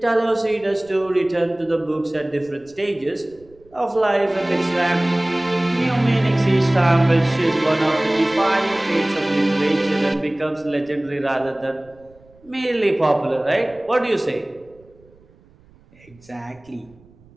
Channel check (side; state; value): right; noise; rumble, 28 dB below the sound